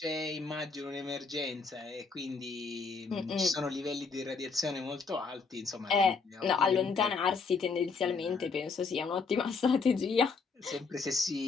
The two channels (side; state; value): right; quieter; 4.8 dB